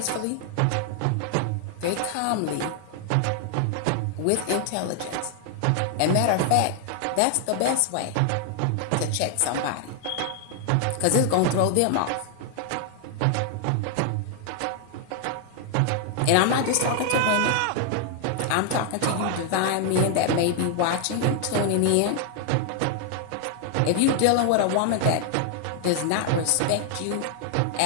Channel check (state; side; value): different; both; correlation 0.00